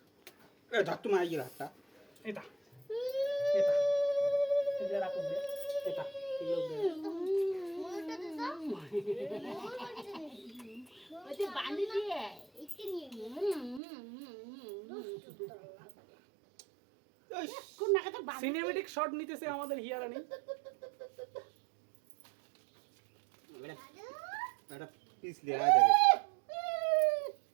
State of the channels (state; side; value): drops out; left; at 13.8 s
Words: ধর তুমি আইয়ে হাতটা। এটা এটা এটা রাখো বে এটা ওইটা বাঁধি দিয়ে কোন নাগাতে বাঁধি সিনেমেটিক শট নিতেছে আমাদের হিয়ারানি। এটা পিছলে আয় দেখে।